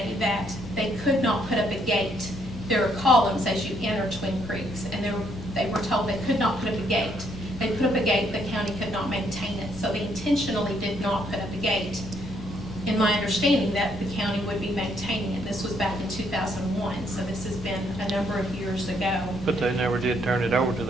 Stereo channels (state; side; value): normal; both; correlation 0.71